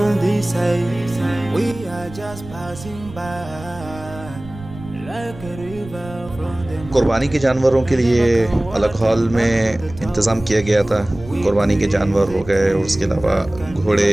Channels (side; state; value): right; noise; rumble, 16 dB below the sound